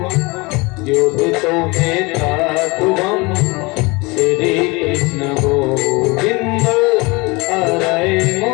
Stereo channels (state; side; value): quieter; right; 25.6 dB